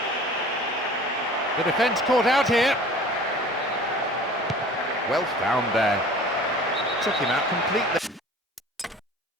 The defence caught out here. Well found there. Took him out completely.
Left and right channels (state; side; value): normal; both; correlation 0.44